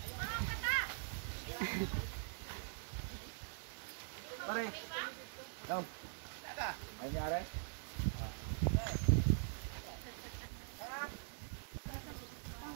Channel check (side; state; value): left; silent; digital silence